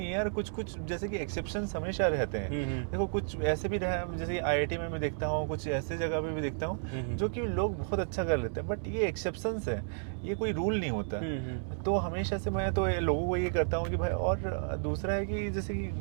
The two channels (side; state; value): left; silent; digital silence